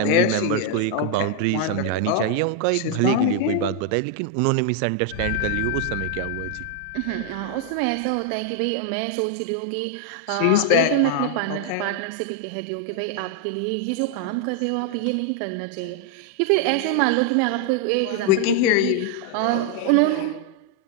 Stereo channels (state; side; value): different; both; correlation 0.00